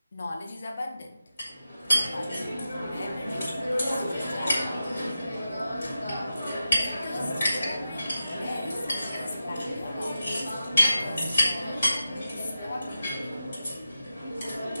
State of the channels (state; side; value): inverted; both; correlation -0.90